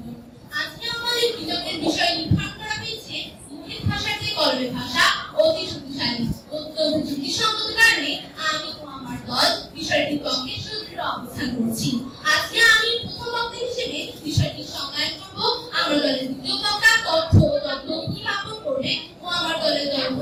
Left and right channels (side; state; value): both; identical; correlation 1.00